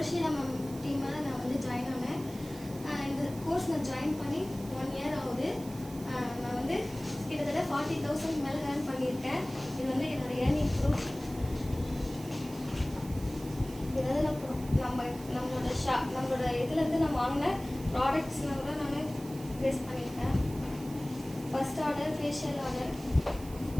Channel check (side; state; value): right; noise; hiss, 18 dB below the sound